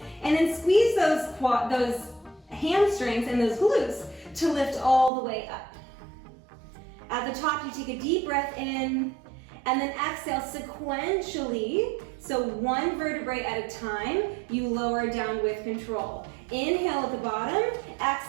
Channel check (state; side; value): drops out; left; at 5.1 s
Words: and then squeeze those hamstrings and those glutes to lift all the way up. At the top, you take a deep breath in, and then exhale sequentially, so one vertebrae at a time, you lower down with control. Inhale at the bottom,